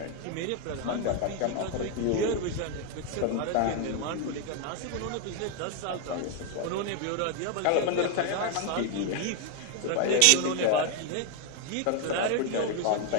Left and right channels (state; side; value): different; both; correlation 0.01